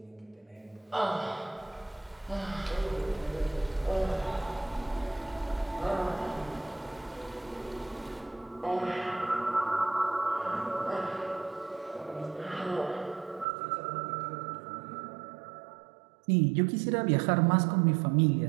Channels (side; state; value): left; drops out; at 13.5 s